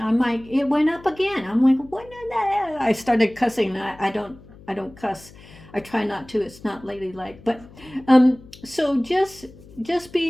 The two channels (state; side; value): noise; left; hum, 21 dB below the sound